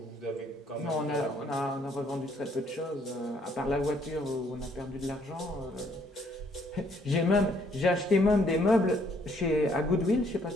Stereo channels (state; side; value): normal; both; correlation 0.67